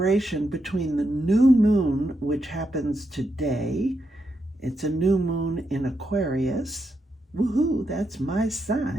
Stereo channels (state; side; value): normal; both; correlation 0.83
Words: between the new moon, which happens today. It's a new moon in Aquarius. Woohoo, that's my